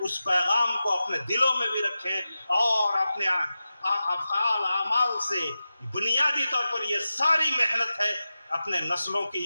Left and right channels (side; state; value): both; inverted; correlation -0.93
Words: پیغام کو اپنے دلوں میں بھی رکھیں، اور اپنے افعال اعمال سے بنیادی طور پر یہ ساری محنت ہے اپنے نسلوں کی